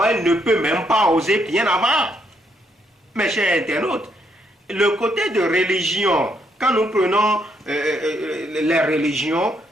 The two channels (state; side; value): normal; both; correlation 0.74